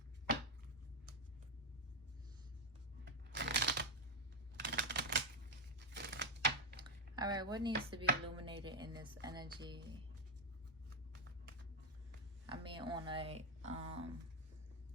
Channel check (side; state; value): both; normal; correlation 0.05